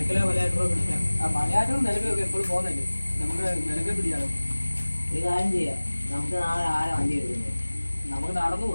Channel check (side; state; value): both; inverted; correlation -1.00